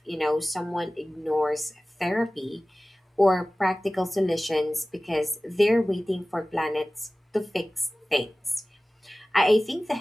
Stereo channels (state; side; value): normal; both; correlation 0.97